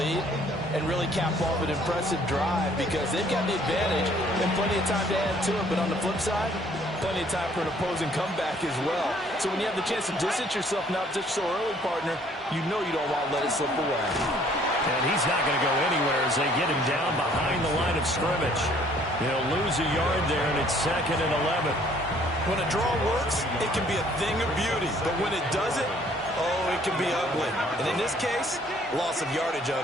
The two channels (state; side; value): normal; both; correlation 0.60